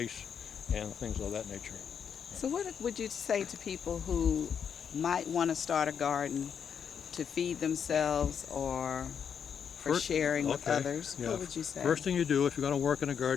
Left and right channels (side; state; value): right; quieter; 7.5 dB